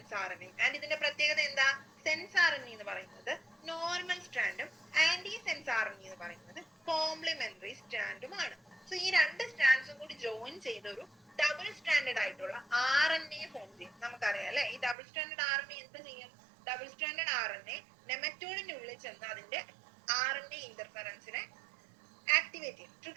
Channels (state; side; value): drops out; left; at 15.0 s